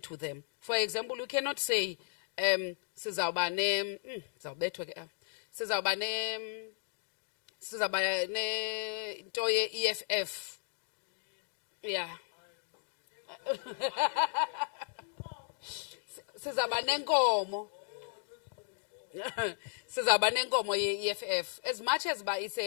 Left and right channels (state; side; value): silent; right; 54 dB below the other